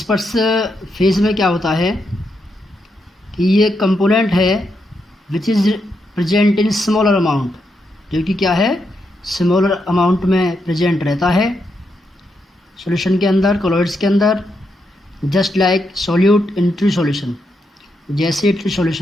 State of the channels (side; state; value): both; normal; correlation 0.82